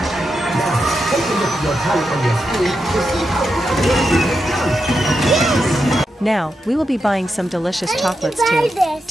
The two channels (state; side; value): normal; both; correlation 0.86